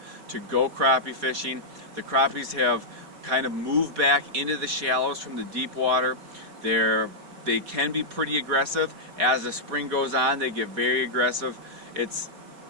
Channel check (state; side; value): late; left; 4.8 ms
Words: to go crappie fishing. The crappies have kind of moved back into the shallows from the deep water. They can be pretty aggressive. As the spring goes on, they get very aggressive. It's